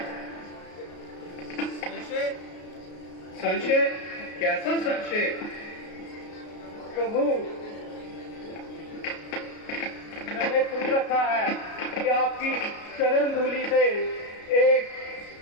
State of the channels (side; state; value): right; late; 33 ms